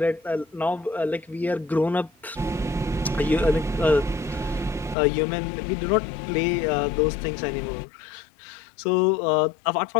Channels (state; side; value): drops out; right; at 5.0 s